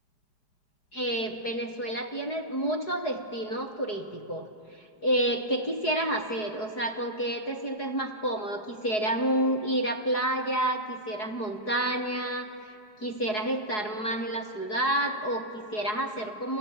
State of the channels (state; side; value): late; right; 4.7 ms